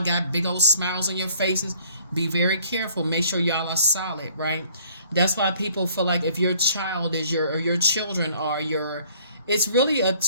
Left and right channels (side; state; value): both; inverted; correlation -0.58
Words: got big old smiles on your faces. Be very careful. Make sure y'all are solid, right? That's why people feel like if your child is your children are your, it's really a